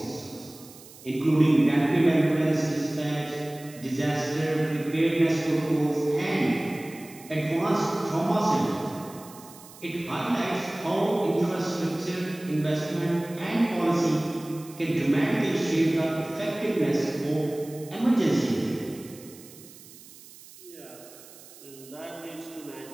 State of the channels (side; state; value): right; noise; hiss, 20 dB below the sound